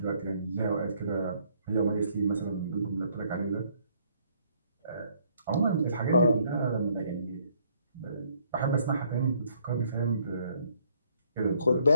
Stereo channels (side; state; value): both; inverted; correlation -0.67